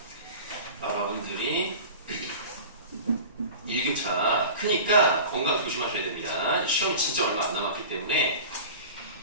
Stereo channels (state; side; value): inverted; both; correlation -0.36